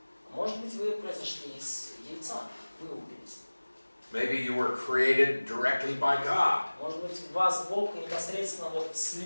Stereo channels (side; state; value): both; inverted; correlation -1.00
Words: Может быть, вы произошли из яйца, вылупились. Maybe you were created directly by God. Может быть, вас Бог непосредственно вот